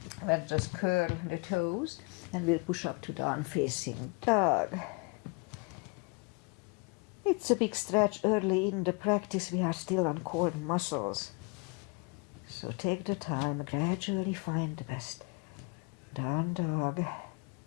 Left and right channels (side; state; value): right; quieter; 30.5 dB